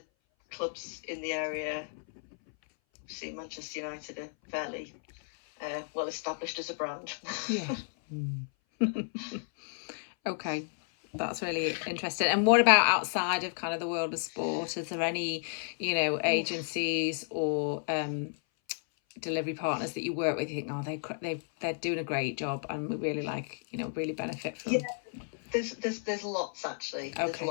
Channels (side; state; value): right; silent; 56 dB below the other